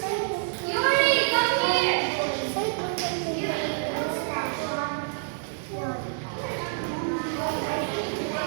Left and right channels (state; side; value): silent; left; 60 dB below the other